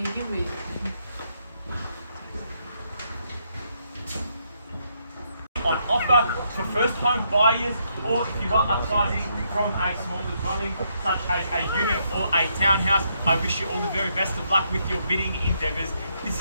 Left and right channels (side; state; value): both; inverted; correlation -0.76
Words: offer for first home buyers, or if you are upsizing from a smaller dwelling such as a unit or a townhouse. I wish you all the very best of luck with your bidding endeavours. This